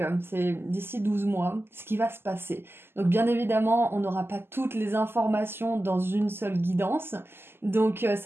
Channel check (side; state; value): left; late; 0.11 ms